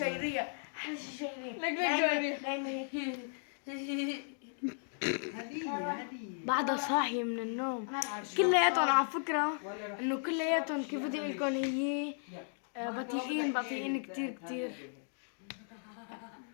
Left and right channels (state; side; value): silent; right; digital silence